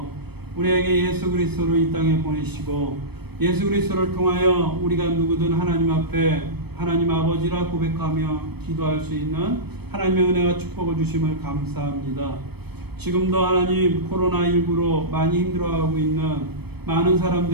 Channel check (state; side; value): late; left; 0.97 ms